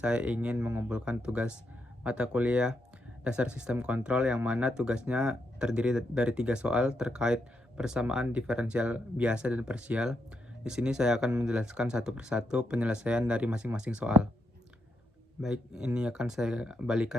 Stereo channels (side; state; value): both; normal; correlation 0.81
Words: ingin mengumpulkan tugas mata kuliah dasar sistem kontrol yang mana tugasnya terdiri dari 3 soal terkait persamaan diferensial biasa dan parsial. Di sini saya akan menjelaskan satu persatu penyelesaian dari masing-masing soal. Baik, ini akan saya